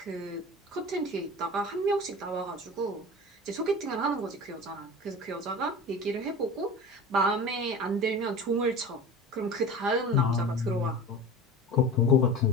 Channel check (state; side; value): normal; both; correlation 0.34